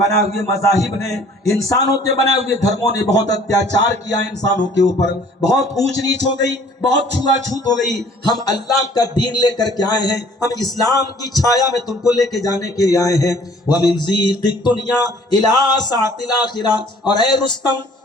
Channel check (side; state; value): both; normal; correlation 0.55